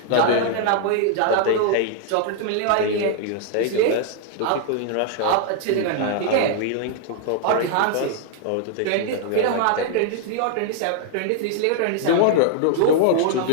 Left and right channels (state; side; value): different; both; correlation 0.00